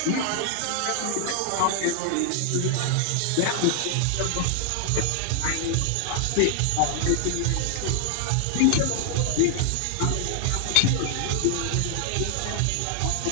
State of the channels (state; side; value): different; both; correlation 0.00